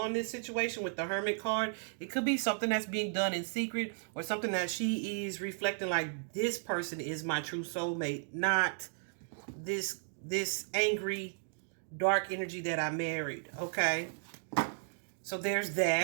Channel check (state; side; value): silent; left; digital silence